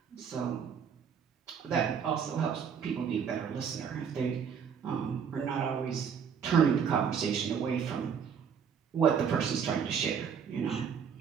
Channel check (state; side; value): quieter; left; 7.1 dB